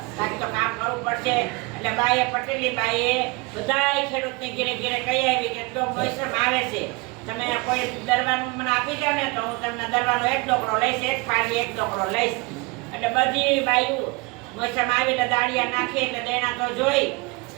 બાકી તો કામ કરવું પડશે. એટલે બાઈએ પટેલી બાઈએ બધાય ખેડૂતને ઘેરે ઘેરે કહી આવી કે જો મોસમ આવે છે, તમે કોઈ દરવાનું મને આપી જાવ ને તો હું તમને દરવાનો 1 ડોકરો લઈશ, 1 પાડી 1 ડોકરો લઈશ. એટલે બધી બાયું મોસમ આવી એટલે દાળિયા નાખી એટલે દેણા તો જોઈ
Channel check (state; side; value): quieter; left; 25.9 dB